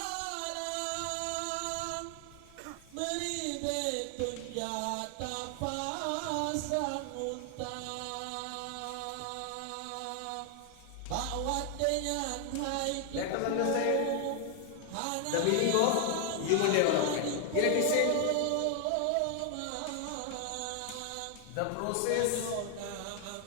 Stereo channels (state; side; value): different; both; correlation 0.00